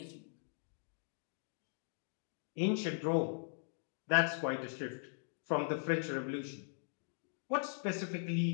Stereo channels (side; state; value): right; silent; digital silence